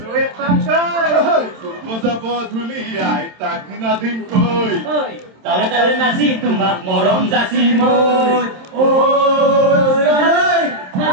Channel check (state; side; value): late; left; 27 ms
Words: যাব ধুলি আই তাক নাদিম কই তালে তালে নাচি তোমাক মৰম যাচি মই